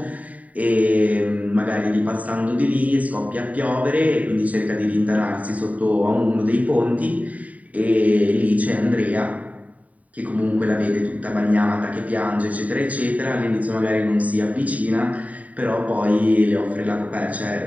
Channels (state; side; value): late; left; 0.070 ms